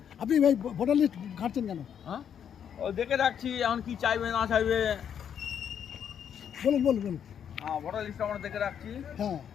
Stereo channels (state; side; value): quieter; right; 8.5 dB